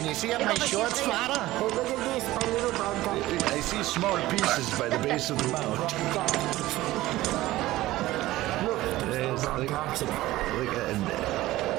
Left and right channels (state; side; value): quieter; left; 16.8 dB